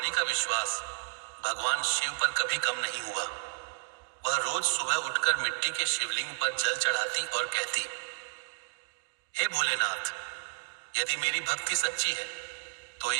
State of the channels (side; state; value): left; silent; 57 dB below the other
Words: का विश्वास भगवान शिव पर कभी कम नहीं हुआ। वह रोज सुबह उठकर मिट्टी के शिवलिंग पर जल चढ़ाती और कहती, हे भोलेनाथ, यदि मेरी भक्ति सच्ची है तो